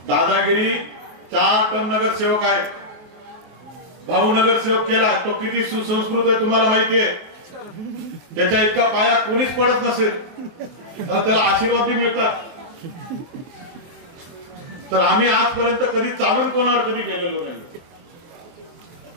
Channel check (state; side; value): late; left; 23 ms